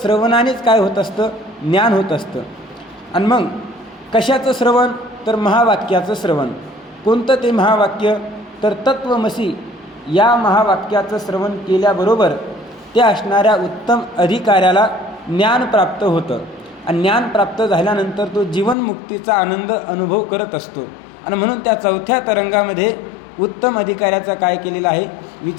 काय होत असतं, ज्ञान होत असतं. आणि मग कशाचं श्रवण तर महावाक्याचं श्रवण. कोणतं ते महावाक्य तर तत्वमसी या महावाक्याचं श्रवण केल्याबरोबर त्या असणाऱ्या उत्तम अधिकाऱ्याला ज्ञान प्राप्त होतं. आणि ज्ञान प्राप्त झाल्यानंतर तो जीवनमुक्तीचा आनंद अनुभव करत असतो. आणि म्हणून त्या 4थ्या तरंगामध्ये उत्तम अधिकाऱ्याचा काय केलेला आहे,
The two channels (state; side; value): drops out; right; at 18.8 s